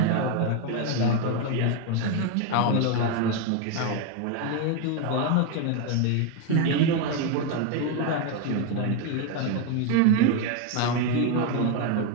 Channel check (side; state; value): both; different; correlation 0.02